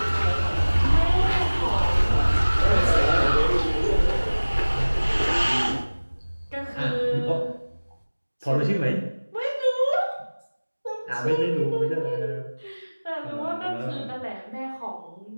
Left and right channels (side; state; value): both; inverted; correlation -1.00